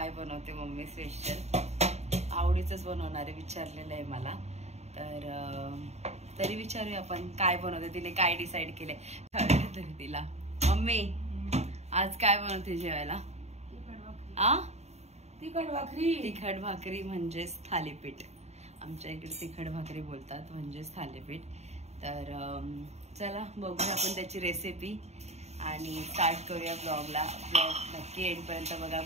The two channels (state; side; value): late; left; 0.32 ms